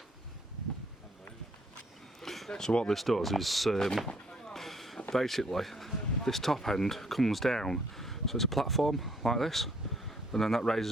So what this does is basically this top end comes down, so it's a platform like this, and then that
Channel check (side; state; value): both; normal; correlation 0.64